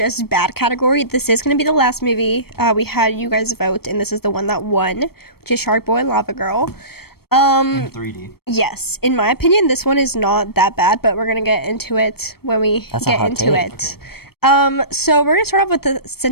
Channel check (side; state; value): right; late; 0.95 ms